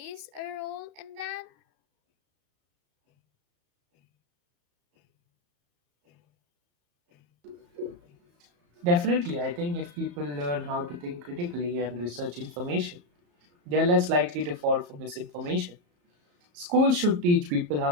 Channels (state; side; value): late; left; 34 ms